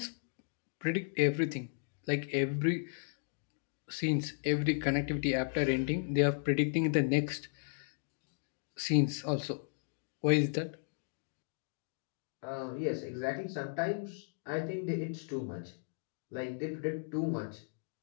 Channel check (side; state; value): right; silent; digital silence